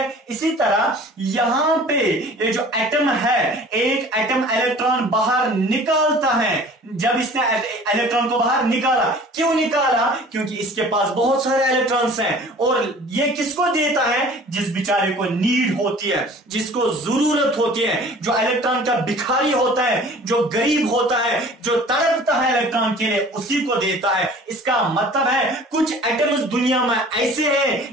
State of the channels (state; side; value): normal; both; correlation 0.47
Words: इसी तरह यहां पे ये जो एटम है, एक एटम इलेक्ट्रॉन बाहर निकालता है। जब इसने इलेक्ट्रॉन को बाहर निकाला, क्यों निकाला? क्योंकि इसके पास बहुत सारे इलेक्ट्रॉन्स हैं और ये किसको देता है? जिस बेचारे को नीड होती है, जिसको जरूरत होती है, जो इलेक्ट्रॉन का भिखारी होता है, जो गरीब होता है, जो तड़पता है इलेक्ट्रॉन के लिए, उसी को देता है। इसका मतलब है कुछ एटम्स दुनिया में ऐसे